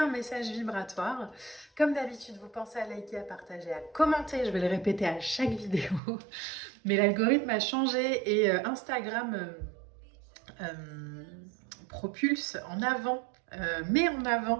message vibratoire. Comme d'habitude, vous pensez à liker, à partager, à commenter, je vais le répéter à chaque vidéo. Mais l'algorithme a changé et Instagram propulse en avant, met en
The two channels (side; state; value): left; drops out; at 6.0 s